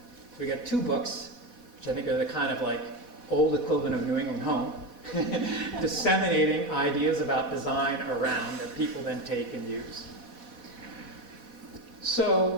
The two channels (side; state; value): left; late; 4.1 ms